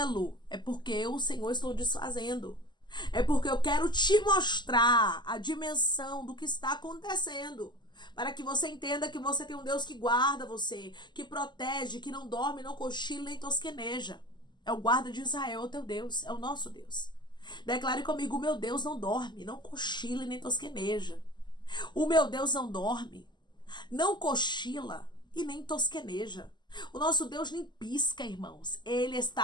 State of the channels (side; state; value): right; late; 0.21 ms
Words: é porque eu, o Senhor, estou desfazendo. É porque eu quero te mostrar a dimensão do que está acontecendo, para que você entenda que você tem um Deus que guarda você, que protege, que não dorme, não cochila nem tosqueneja. É o guarda de Israel, o teu Deus, é o nosso Deus. Declare comigo: o meu Deus não dorme, não cochila e nem tosqueneja. O meu Deus não dorme, não cochila e nem tosqueneja. O nosso Deus nem pisca, irmãos. Ele